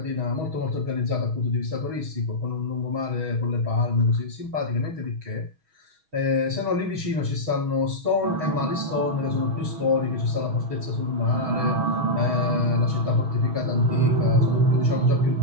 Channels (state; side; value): late; left; 6.3 ms